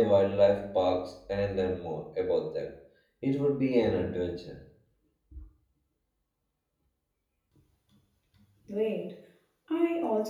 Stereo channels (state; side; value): identical; both; correlation 1.00